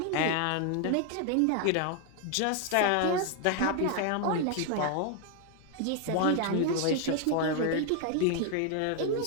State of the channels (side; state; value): both; different; correlation 0.00